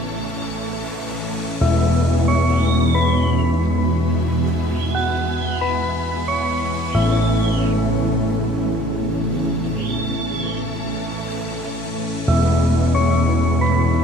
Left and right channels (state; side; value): normal; both; correlation 0.58